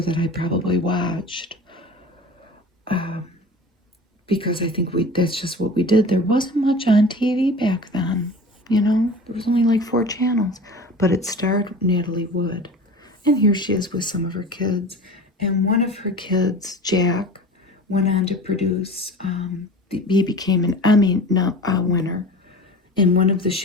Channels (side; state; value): both; normal; correlation 0.38